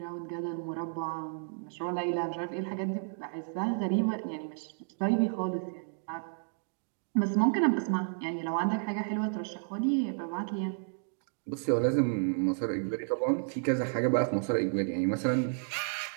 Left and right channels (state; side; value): silent; left; digital silence